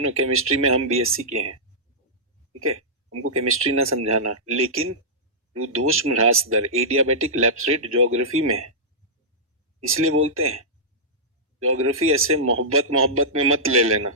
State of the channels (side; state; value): both; normal; correlation -0.14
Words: केमिस्ट्री में हम बीएससी के हैं, ठीक है, हमको केमिस्ट्री ना समझाना। लेकिन रुद्धोष्म ह्रास दर, एडियाबेटिक लैप्स रेट ज्योग्राफी में है, इसलिए बोलते हैं। ज्योग्राफी ऐसे मोहब्बत में मत ले लेना,